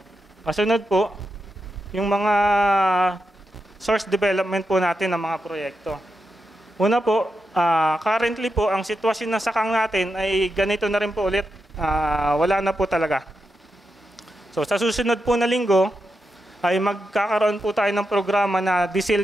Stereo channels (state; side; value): normal; both; correlation 0.87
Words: kasunod po, yung mga source development po natin ng mga proyekto. Una po, currently po, ang sitwasyon ng sakang natin ay ganito na rin po ulit. Wala na po talaga. So sa susunod po na linggo, ay magkakaroon po tayo ng programa na